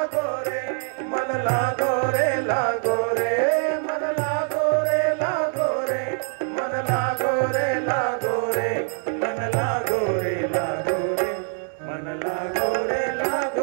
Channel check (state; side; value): silent; left; 57 dB below the other